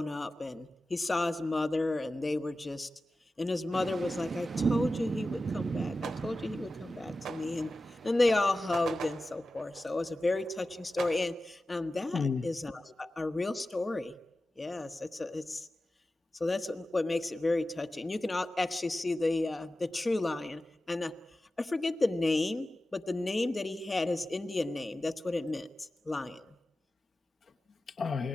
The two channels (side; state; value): both; normal; correlation 0.94